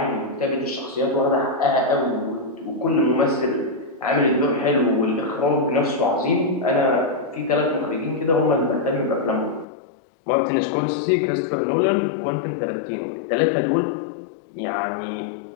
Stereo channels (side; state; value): right; drops out; at 9.7 s